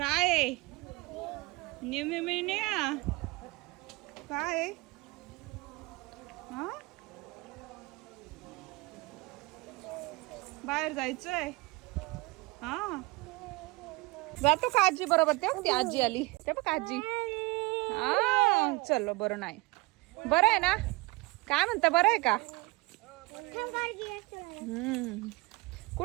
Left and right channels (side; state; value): left; quieter; 23.4 dB